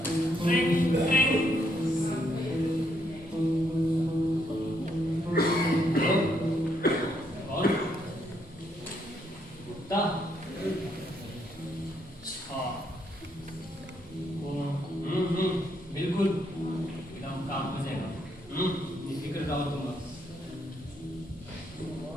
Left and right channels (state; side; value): normal; both; correlation 0.75